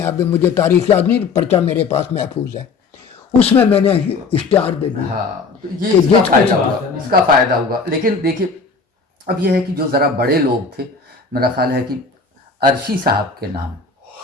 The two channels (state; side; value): quieter; right; 4.5 dB